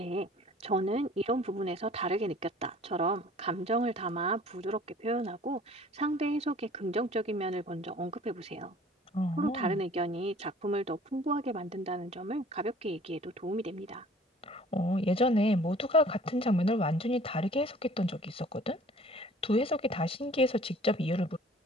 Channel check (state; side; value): normal; both; correlation 0.50